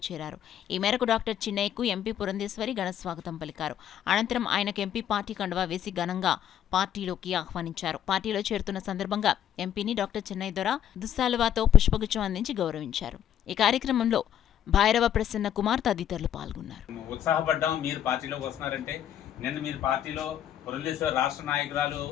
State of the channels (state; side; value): quieter; right; 10.2 dB